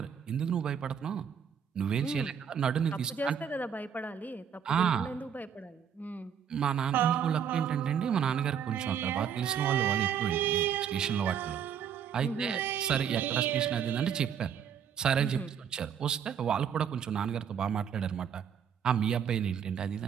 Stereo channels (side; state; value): left; quieter; 8.0 dB